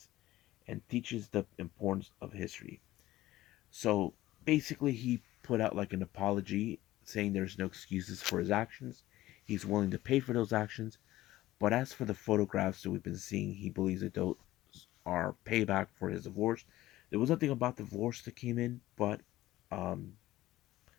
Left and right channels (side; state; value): right; quieter; 16.0 dB